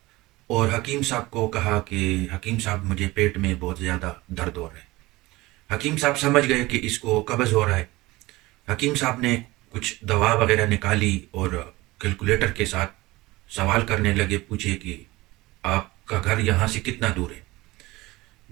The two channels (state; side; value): quieter; left; 20.2 dB